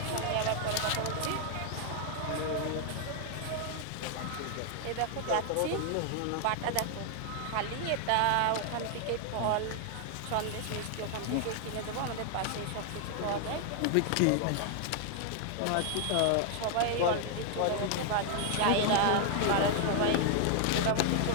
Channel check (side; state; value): both; different; correlation 0.00